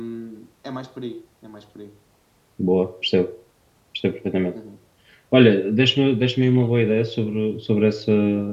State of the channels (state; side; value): identical; both; correlation 1.00